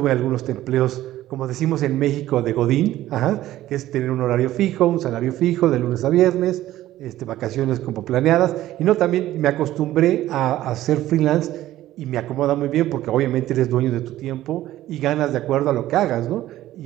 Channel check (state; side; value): quieter; left; 14.4 dB